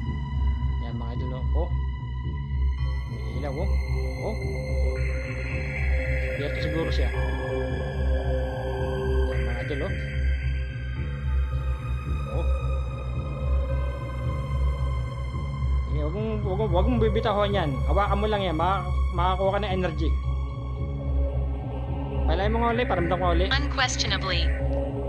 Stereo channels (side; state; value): both; identical; correlation 1.00